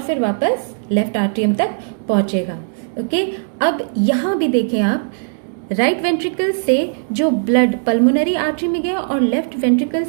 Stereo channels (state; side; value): silent; left; digital silence